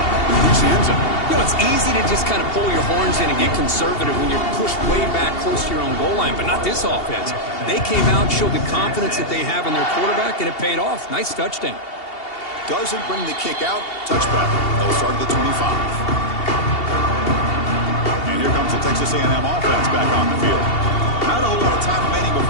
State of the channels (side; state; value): right; late; 2.7 ms